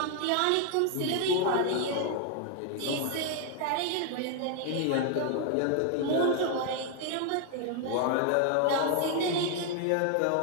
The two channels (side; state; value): both; different; correlation 0.00